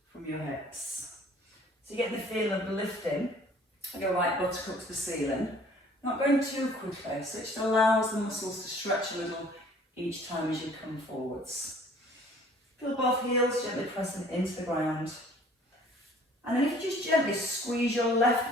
from your hips. So you get the feel of lifting. Your right buttock up to the ceiling. Not going too quickly, so it just allows the muscles to stretch a little each time as you come forwards. Feel both heels gently pressing into the ground. And then if you just gently squeeze your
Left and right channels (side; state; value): both; normal; correlation 0.54